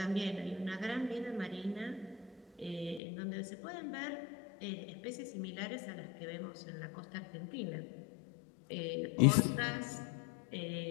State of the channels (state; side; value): drops out; right; at 3.0 s